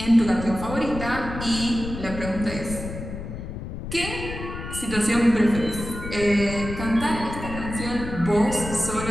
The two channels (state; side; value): noise; left; rumble, 8 dB below the sound